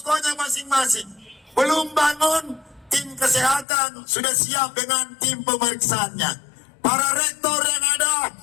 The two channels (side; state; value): right; drops out; at 3.7 s